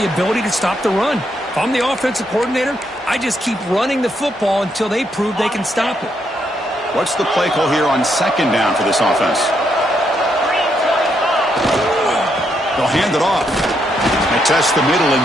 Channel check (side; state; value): both; normal; correlation 0.77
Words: ability to stop the run. If I'm the offensive coordinator, I just keep running the football until they prove they can stop it. What's the play call here on 2nd down for this offense? They'll hand it off. They test the middle